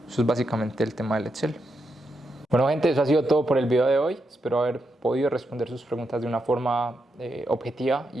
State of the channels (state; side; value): normal; both; correlation 0.83